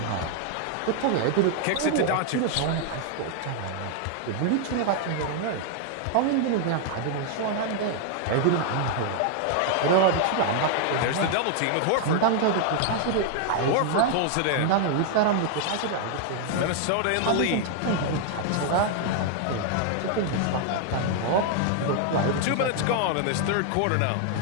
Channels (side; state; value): both; different; correlation 0.00